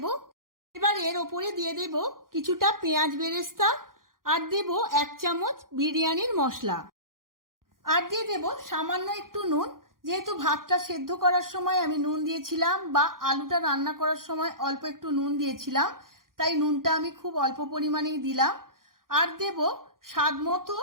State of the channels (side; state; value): left; late; 0.91 ms